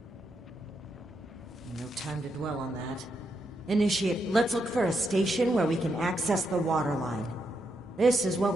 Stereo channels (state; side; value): normal; both; correlation 0.81